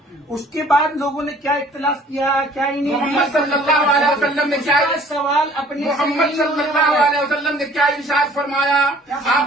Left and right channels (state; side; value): normal; both; correlation 0.54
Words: اس کے بعد لوگوں نے کیا اختلاف کیا، کیا ہی نہیں، محمد صلی اللہ علیہ وسلم نے کیا سوال اپنے، محمد صلی اللہ علیہ وسلم نے کیا ارشاد فرمایا؟